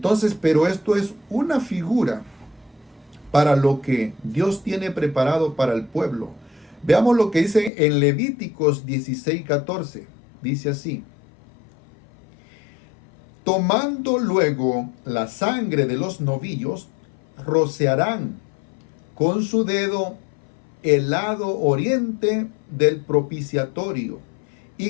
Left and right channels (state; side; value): drops out; right; at 7.7 s